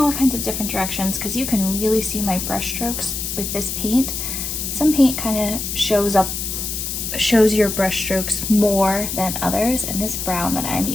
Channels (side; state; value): left; noise; hiss, 4 dB below the sound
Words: kinds of different directions because you can really see my brush strokes with this paint. Some paint kind of shows your brush strokes more than others, and this brown that I'm